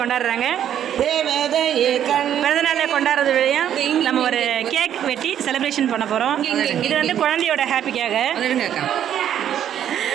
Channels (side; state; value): left; quieter; 10.1 dB